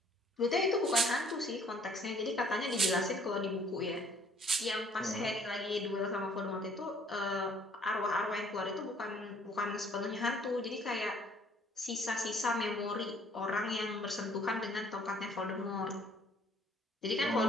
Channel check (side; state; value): both; normal; correlation 0.60